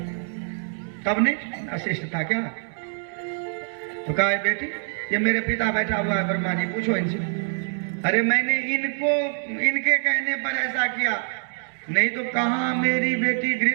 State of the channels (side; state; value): left; silent; digital silence